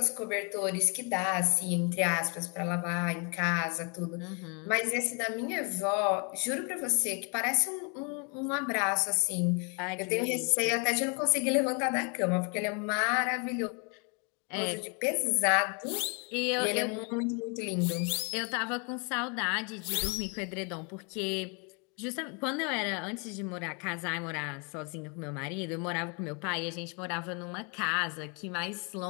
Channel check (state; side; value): quieter; right; 35.5 dB